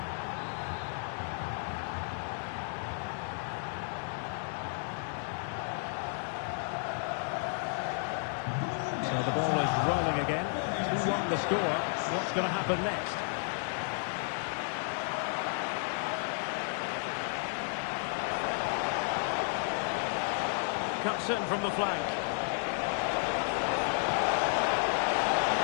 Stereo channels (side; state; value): right; silent; 56 dB below the other